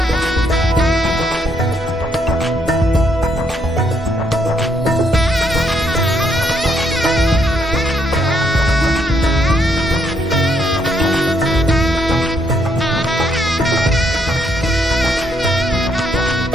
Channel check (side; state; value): both; normal; correlation 0.73